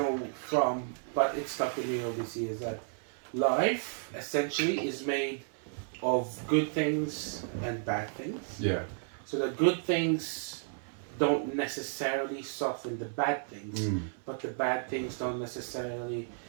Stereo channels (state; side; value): silent; left; 56 dB below the other